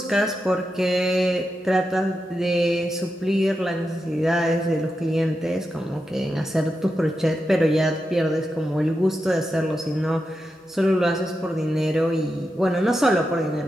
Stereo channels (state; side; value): normal; both; correlation 0.88